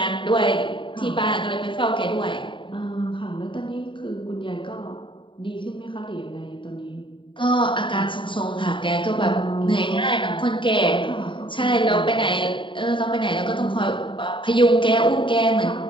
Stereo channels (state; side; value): late; right; 0.24 ms